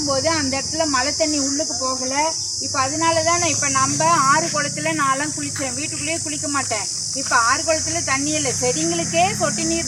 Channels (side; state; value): both; identical; correlation 1.00